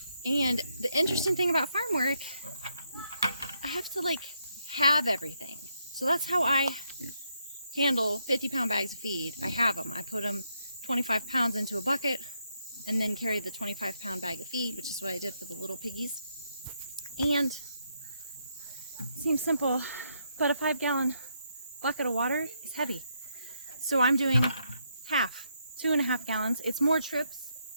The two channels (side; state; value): both; inverted; correlation -0.78